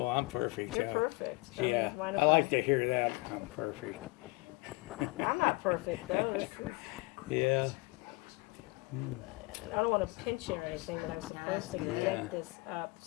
I'm perfect. You're perfect. Yeah. I like to hear that. I'm perfect. I'm not perfect, though. Yeah. I don't want to pinch you or anything, but I'm supposed to get this up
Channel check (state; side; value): quieter; right; 24.8 dB